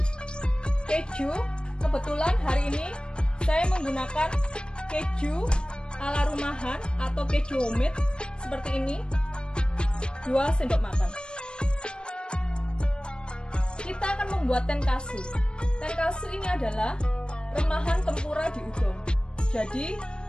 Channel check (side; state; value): right; late; 0.052 ms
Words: keju, kebetulan hari ini saya menggunakan keju ala rumahan atau keju homemade seperti ini, 2 sendok makan. Kita akan membuat tenkatsu. Tenkatsu ini adalah remahan tempura di udon. Jadi